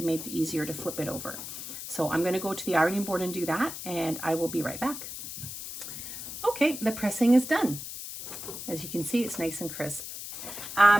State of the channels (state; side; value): noise; left; hiss, 9 dB below the sound